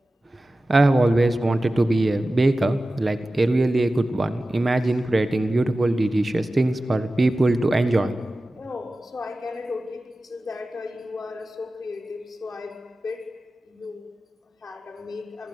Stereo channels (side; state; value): both; normal; correlation 0.95